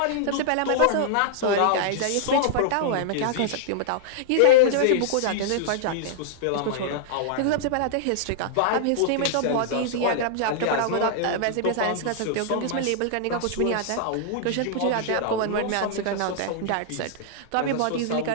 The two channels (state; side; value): different; both; correlation -0.01